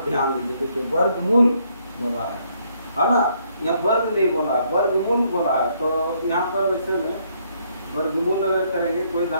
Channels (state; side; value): inverted; both; correlation -0.70